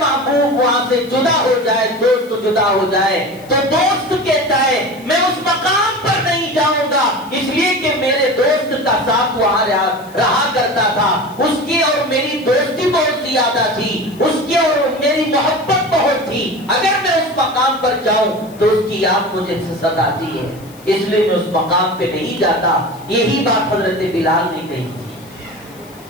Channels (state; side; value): noise; left; hiss, 24 dB below the sound